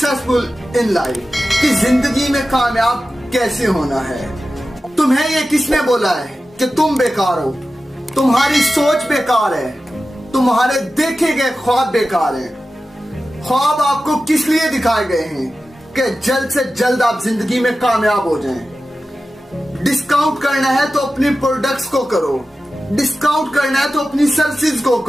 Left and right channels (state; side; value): normal; both; correlation 0.94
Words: in life, कि जिंदगी में कामयाब कैसे होना है। तुम्हें ये किसने बोला है कि तुम बेकार हो? तुम्हारी सोच बेकार है, तुम्हारे देखे गए ख्वाब बेकार हैं। ख्वाब आपको किस लिए दिखाए गए हैं कि जल्द से जल्द आप जिंदगी में कामयाब हो जाएं। डिस्काउंट करना है तो अपनी प्रोडक्ट्स को करो, डिस्काउंट करना है तो अपनी सर्विसेज को